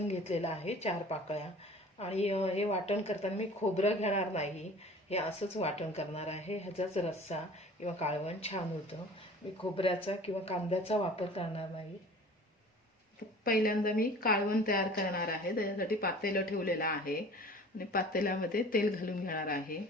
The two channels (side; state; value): both; normal; correlation 0.45